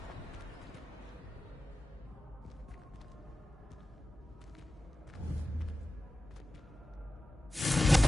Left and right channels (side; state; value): both; normal; correlation 0.94